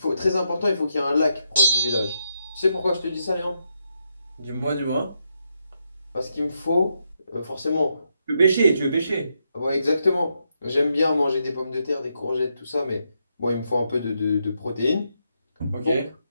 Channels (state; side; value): inverted; both; correlation -0.81